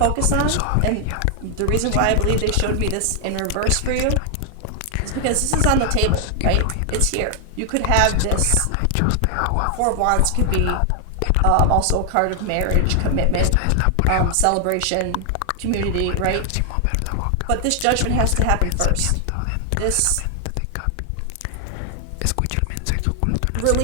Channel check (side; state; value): both; different; correlation 0.00